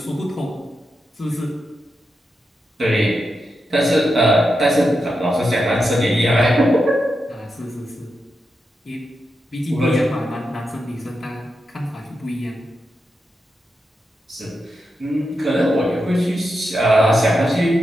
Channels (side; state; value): both; normal; correlation 0.87